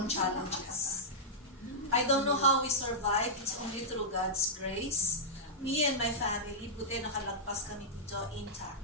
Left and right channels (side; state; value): both; normal; correlation -0.11